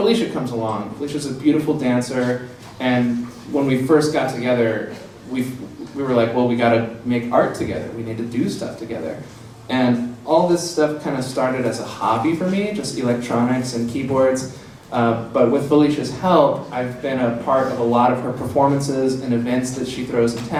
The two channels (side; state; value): both; identical; correlation 1.00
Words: comes along. Felicia's a beautiful dancer, and when we first got together, we were like, well, we gotta make art together. We need to do stuff together. And all this stuff kind of started as a hobby for me, just electronics and keyboards. But with Felicia's help, I've been a part of a lot of her performances and events that she throws in